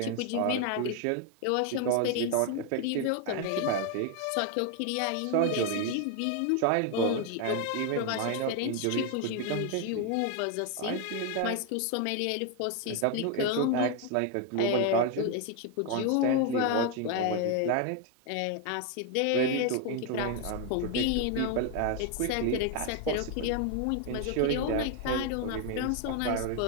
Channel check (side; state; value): both; different; correlation 0.01